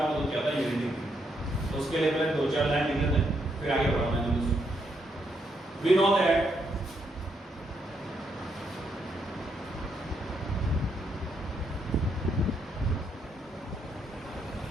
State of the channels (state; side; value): normal; both; correlation 0.77